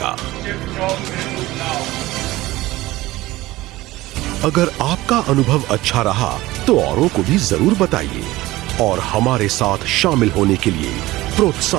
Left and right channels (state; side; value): quieter; left; 18.1 dB